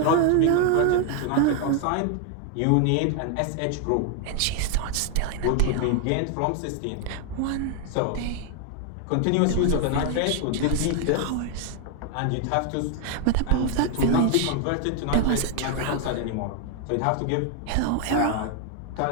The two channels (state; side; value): different; both; correlation 0.00